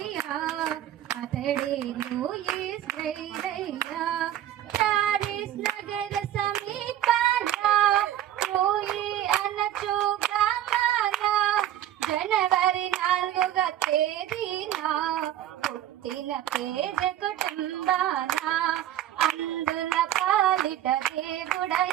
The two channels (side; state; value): left; quieter; 12.0 dB